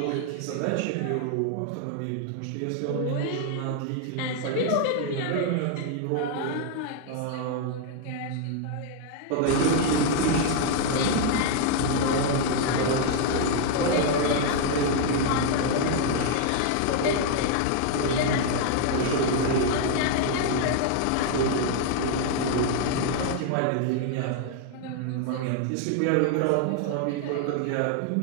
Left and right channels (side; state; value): both; different; correlation 0.00